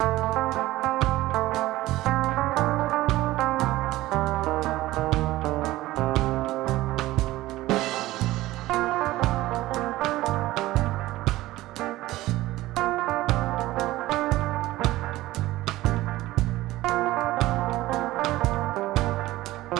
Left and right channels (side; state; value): left; quieter; 17.1 dB